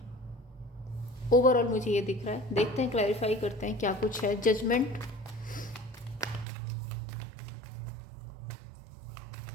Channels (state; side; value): drops out; left; at 6.5 s